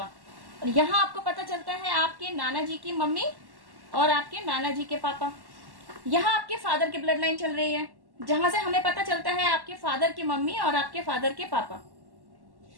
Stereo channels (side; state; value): left; late; 1.1 ms